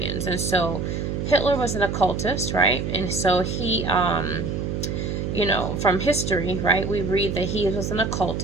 so Hitler was an occultist, right? And so he from history, right, we read that he was an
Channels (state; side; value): noise; right; hum, 2 dB below the sound